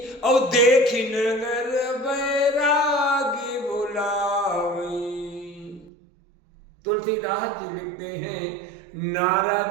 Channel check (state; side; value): drops out; left; at 5.9 s